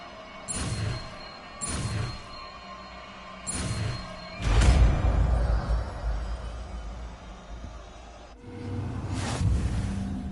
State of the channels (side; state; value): both; identical; correlation 1.00